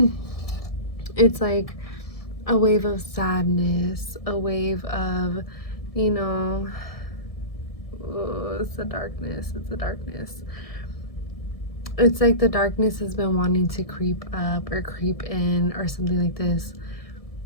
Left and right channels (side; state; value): right; late; 1.7 ms